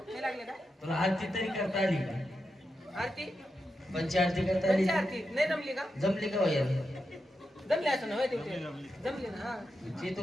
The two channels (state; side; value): normal; both; correlation 0.88